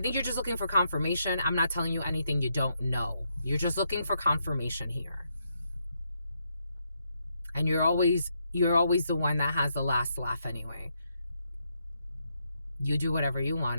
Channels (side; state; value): both; inverted; correlation -0.79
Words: you're just looking for confirmation. I'm not telling you anything you don't know. You're just looking for confirmation here. And you're always the one that has the last laugh anyway. You do whatever you